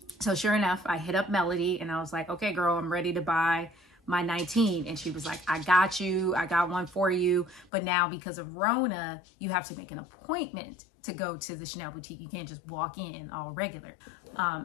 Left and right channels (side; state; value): right; drops out; at 7.7 s